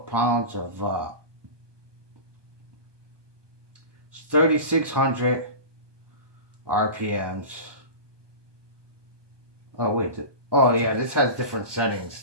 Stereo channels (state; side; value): late; left; 1.2 ms